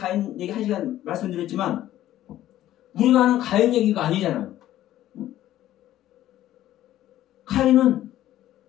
얘기 1시간 말씀드렸지만, 우리가 하는 가인 얘기가 아니잖아요. 가인은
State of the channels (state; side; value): quieter; right; 13.3 dB